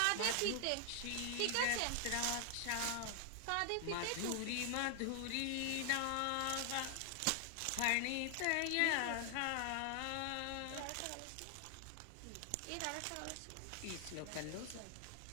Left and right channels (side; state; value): both; different; correlation 0.00